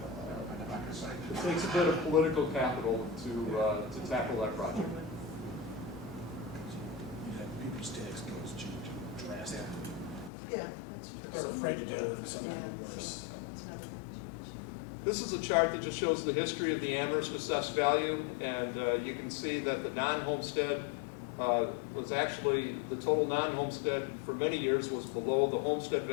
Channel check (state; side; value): drops out; right; at 10.3 s